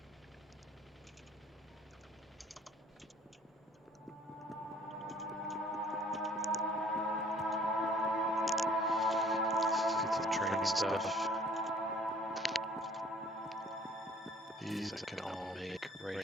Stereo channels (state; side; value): normal; both; correlation 0.55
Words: Let's get some training stuff. These I can all make right